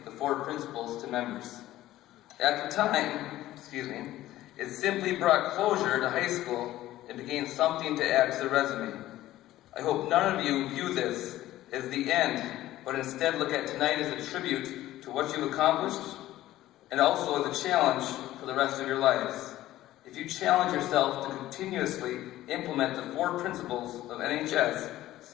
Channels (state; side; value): quieter; right; 14.9 dB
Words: the 4 principles to members. At the time, it simply brought closure to high school and became something to add to the resume. I hope none of you view this as the end, but instead look at tonight as a tribute to what you've accomplished, and also as a challenge for the rest of your lives. If you challenge yourself to continuously implement the 4 principles of NHS,